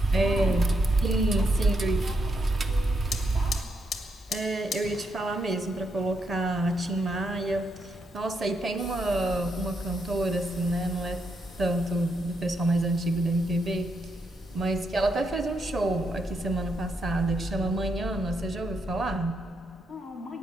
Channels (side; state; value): both; normal; correlation 0.80